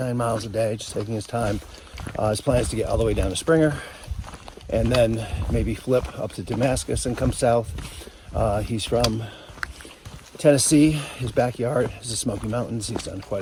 miles a day, just taking his time. His plan is to get all the way down to Springer, and then maybe flip up to Damascus and come south. He's from Tennessee. His backyard is the Smoky Mountains. He's done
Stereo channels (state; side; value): identical; both; correlation 1.00